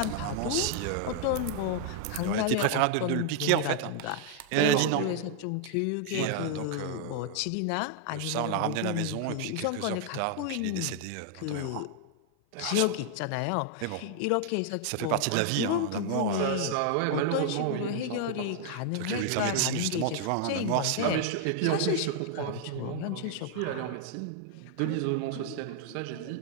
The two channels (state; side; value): different; both; correlation 0.00